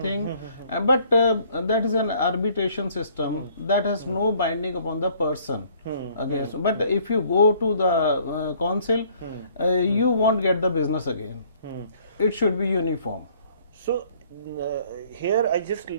But that is an arbitration system that has no binding upon the person against. But if you go to the council, you won't get the business again. It should be uniform. So here I just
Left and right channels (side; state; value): both; inverted; correlation -0.60